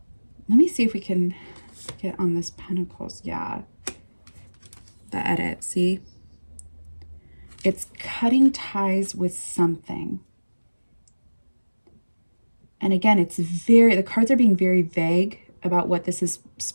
Let me see if we can get on this Pentacles. Yeah. The edit, see? It's cutting ties with something. And again, the cards are being very vague about what this is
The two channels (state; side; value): inverted; both; correlation -1.00